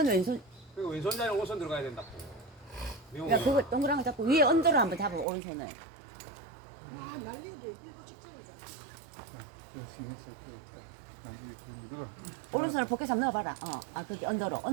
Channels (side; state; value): left; drops out; at 5.2 s